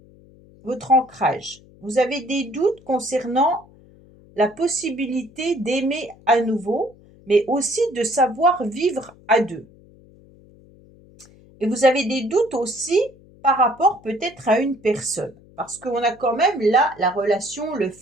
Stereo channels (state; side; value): noise; left; hum, 26 dB below the sound